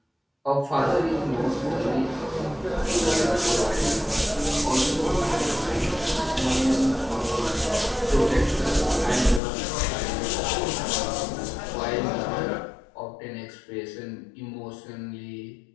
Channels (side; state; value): right; drops out; at 9.4 s